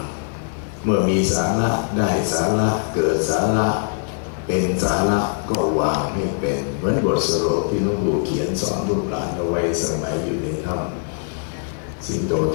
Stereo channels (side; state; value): right; silent; digital silence